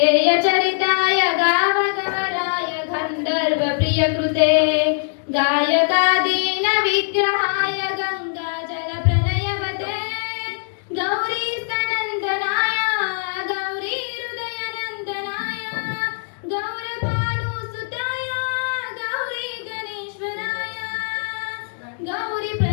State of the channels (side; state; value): right; silent; digital silence